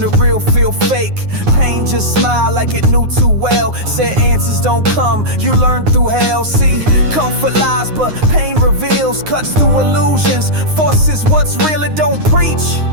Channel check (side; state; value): left; late; 9.6 ms